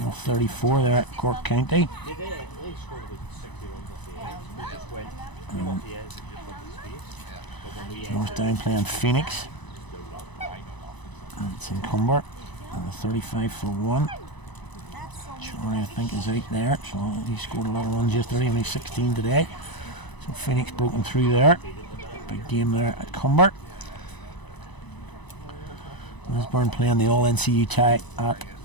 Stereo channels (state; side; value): late; right; 1.0 ms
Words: there at Cork County. Northdown playing Phoenix. And it's in Cumber. And 35 for 1. Shorey, I think, is out there. So he scored a lot of runs yesterday, only 16 today. So Phoenix broken through there. Big game there at Cumber. Lisburn playing the All NCU tie at